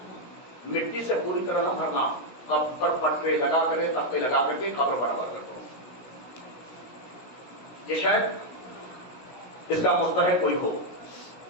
مٹی سے پوری طرح نہ بھرنا، قبر پر پٹرے لگا کر تختے لگا کر کے قبر برابر کر دو. یہ شاید اس کا مستحق کوئی ہو.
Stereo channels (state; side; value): late; right; 16 ms